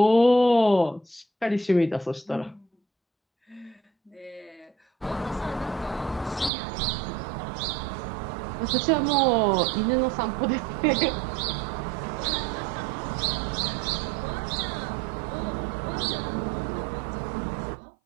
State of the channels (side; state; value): left; drops out; at 6.5 s